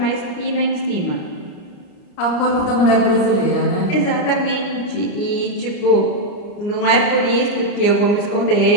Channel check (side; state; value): right; late; 29 ms